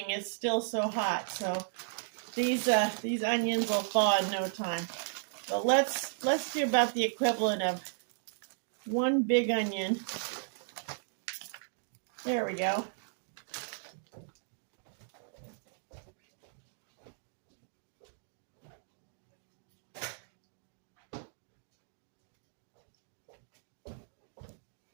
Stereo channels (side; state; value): left; silent; digital silence